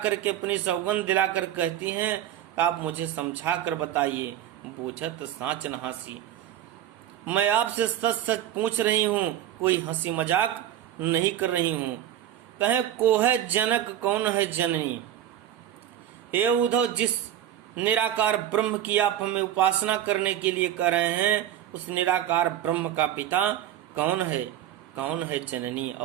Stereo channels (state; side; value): quieter; left; 11.4 dB